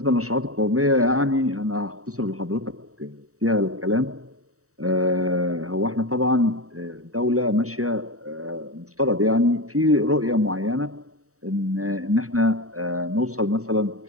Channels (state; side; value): late; left; 0.65 ms